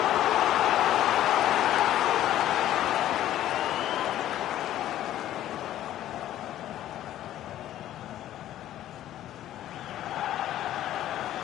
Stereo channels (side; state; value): right; quieter; 12.8 dB